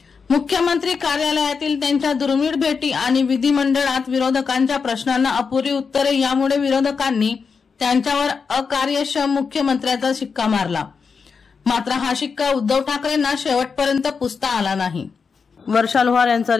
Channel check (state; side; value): quieter; right; 5.5 dB